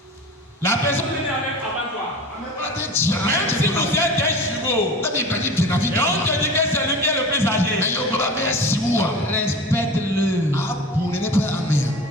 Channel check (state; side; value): normal; both; correlation 0.35